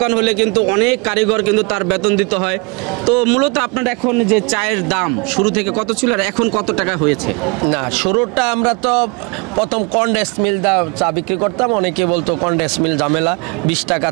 হলে কিন্তু অনেক কারিগর কিন্তু তার বেতন দিতে হয়। তো মূলত আপনার এখন যে চায়ের দাম শুরু থেকে কত ছিল আর এখন কত টাকা হয়েছে? না, শুরুটা আমরা তো প্রথম কন্ডেন্স মিল চা বিক্রি করতাম, অনেকে বলতো কন্ডেন্স মিল ঝামেলা, 20 টাকা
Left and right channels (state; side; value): quieter; left; 30.5 dB